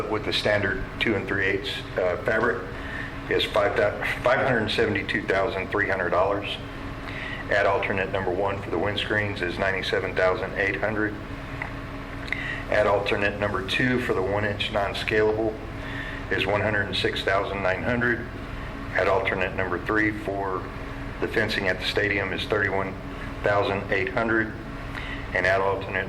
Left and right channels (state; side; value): identical; both; correlation 1.00